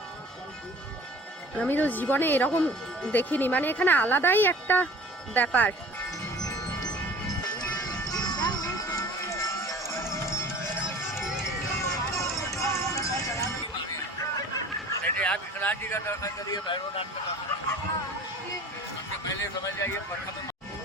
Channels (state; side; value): normal; both; correlation 0.45